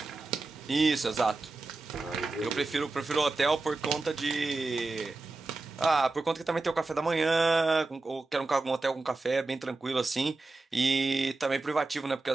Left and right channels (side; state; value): left; quieter; 3.4 dB